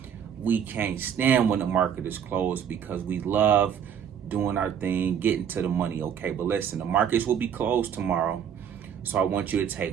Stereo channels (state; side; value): quieter; left; 8.4 dB